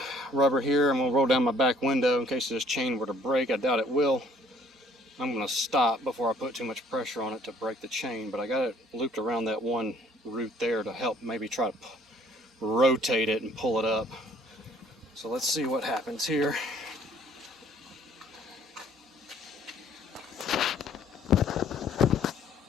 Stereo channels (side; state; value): both; normal; correlation 0.58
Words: rubber here. I'm going to roll down my back window in case this chain were to break. I doubt it will. I'm going to stop before I put too much pressure on it to break the chain, but I got it looped around that one root there to help maybe try to rotate it and pull it up. So let's see what happens here.